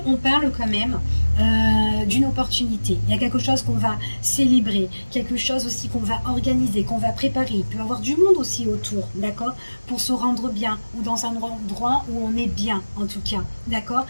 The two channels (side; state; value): both; inverted; correlation -1.00